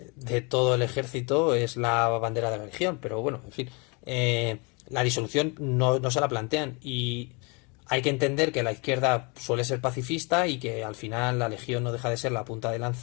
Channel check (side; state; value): right; quieter; 30.8 dB